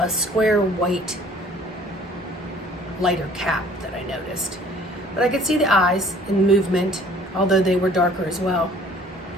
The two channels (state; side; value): normal; both; correlation 0.54